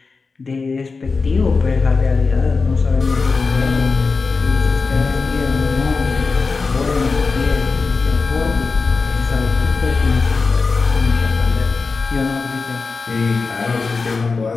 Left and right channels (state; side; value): quieter; right; 4.4 dB